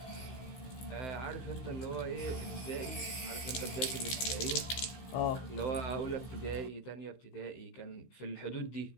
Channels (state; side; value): late; right; 16 ms